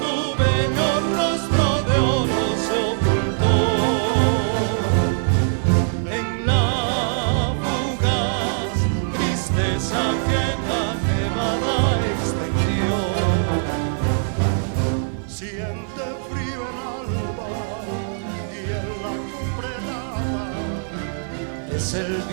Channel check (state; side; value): silent; left; 64 dB below the other